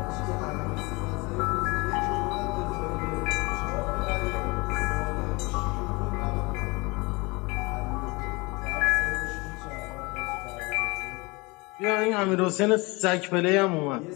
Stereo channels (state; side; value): quieter; right; 25.8 dB